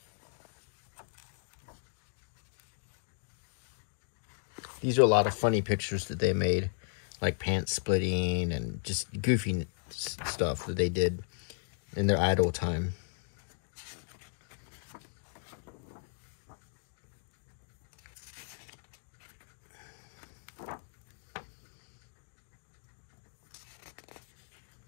These are a lot of funny pictures that they made, like pants splitting and just goofy stuff that they did in their idle time.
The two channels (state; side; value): silent; right; digital silence